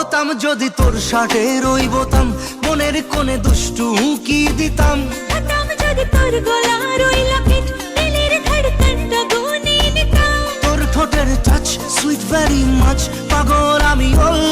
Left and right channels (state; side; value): identical; both; correlation 1.00